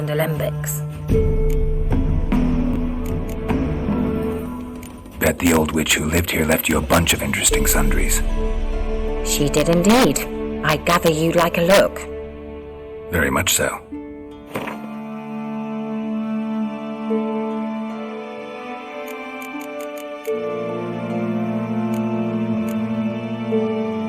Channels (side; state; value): both; identical; correlation 1.00